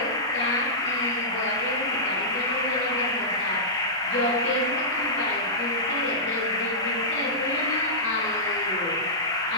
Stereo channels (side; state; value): both; normal; correlation -0.16